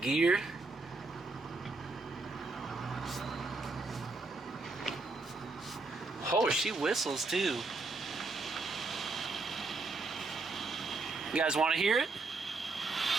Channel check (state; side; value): quieter; left; 3.6 dB